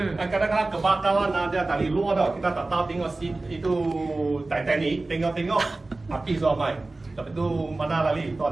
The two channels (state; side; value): quieter; left; 3.1 dB